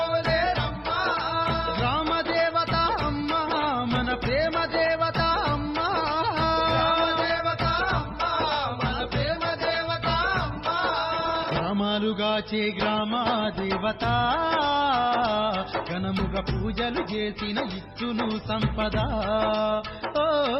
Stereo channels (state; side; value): identical; both; correlation 1.00